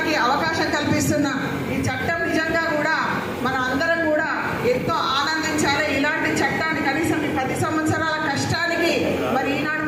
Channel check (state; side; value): identical; both; correlation 1.00